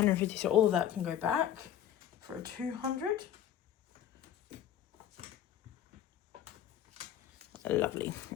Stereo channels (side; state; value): right; quieter; 10.6 dB